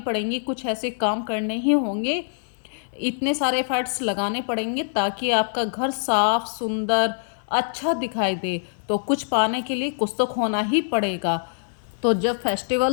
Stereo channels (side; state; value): right; silent; digital silence